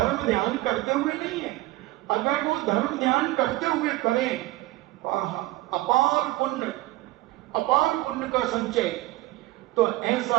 ध्यान करते हुए नहीं है। अगर वो धर्म ध्यान करते हुए करें अपार पुण्य का संचय, तो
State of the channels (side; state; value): left; quieter; 18.2 dB